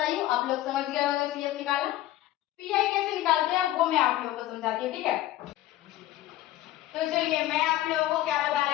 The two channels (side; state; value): right; quieter; 14.7 dB